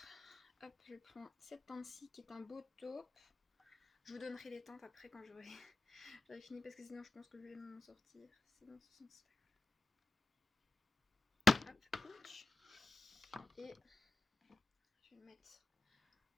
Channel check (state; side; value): quieter; right; 3.2 dB